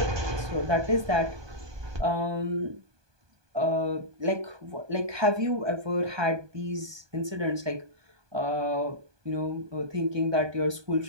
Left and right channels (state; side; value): late; left; 1.2 ms